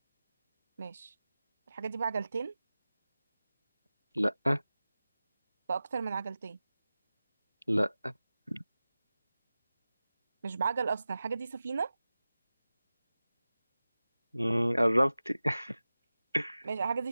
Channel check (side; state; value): both; inverted; correlation -0.96